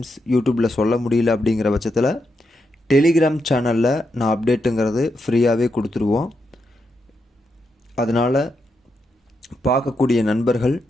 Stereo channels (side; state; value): both; normal; correlation 0.83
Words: யூடியூப்பில் சொல்ல முடியல அப்படிங்கிற பட்சத்தில் டெலிகிராம் சேனலில் நான் அப்டேட்டுங்கிறது ஃப்ரீயாகவே கொடுத்துருவோம். அதனால் பார்க்கக்கூடிய நண்பர்கள்